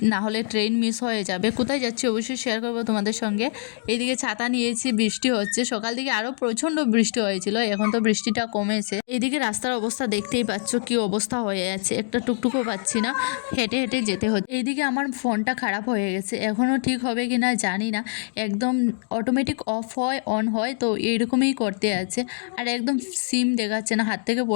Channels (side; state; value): right; silent; digital silence